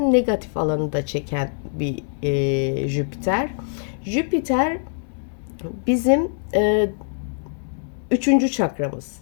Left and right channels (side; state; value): right; silent; 63 dB below the other